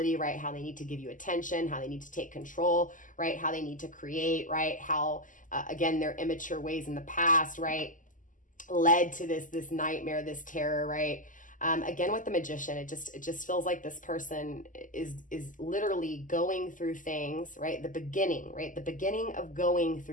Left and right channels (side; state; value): right; late; 0.38 ms